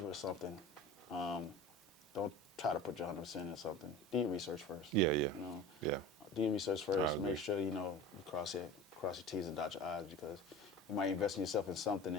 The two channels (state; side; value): normal; both; correlation 0.36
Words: with something, don't try to put your 100% in something. Do your research first. Yeah. Do your research first. Make sure you cross your T's and dot your I's, because you might invest in yourself in something